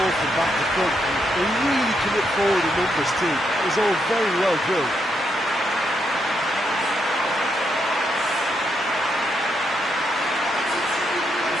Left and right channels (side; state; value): both; normal; correlation 0.79